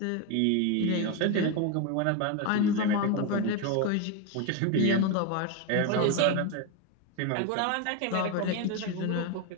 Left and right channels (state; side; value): different; both; correlation 0.02